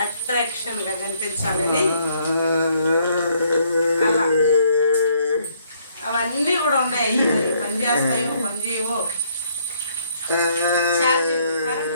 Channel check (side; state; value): both; inverted; correlation -0.68